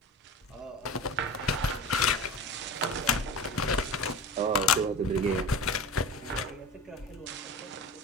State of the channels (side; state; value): both; normal; correlation 0.32